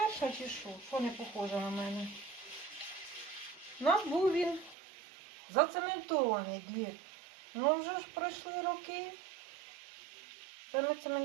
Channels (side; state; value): left; drops out; at 4.8 s